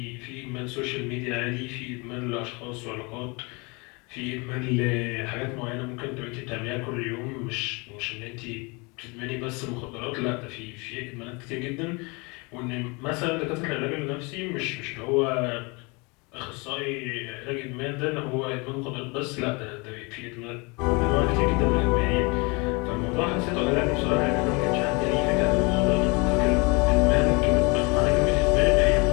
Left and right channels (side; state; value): right; quieter; 28.6 dB